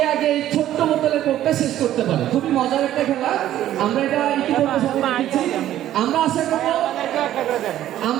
আগে এই ছোট্ট বোতলের কোকটা শেষ করতে পারে। খুবই মজার একটা খেলা। আমরা এটা ইতিমধ্যে সবাই দেখেছি।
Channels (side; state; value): left; quieter; 12.6 dB